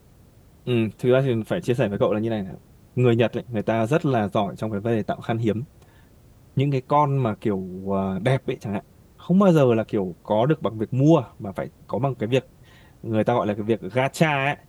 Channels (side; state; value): both; identical; correlation 1.00